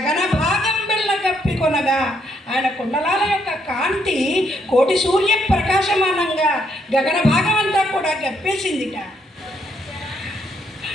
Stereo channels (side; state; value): both; normal; correlation 0.74